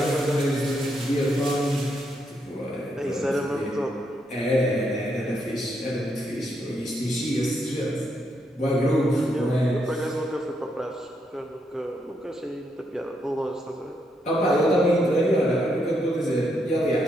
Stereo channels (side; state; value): both; normal; correlation 0.78